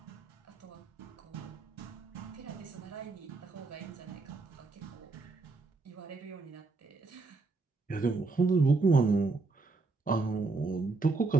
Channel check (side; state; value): left; quieter; 3.8 dB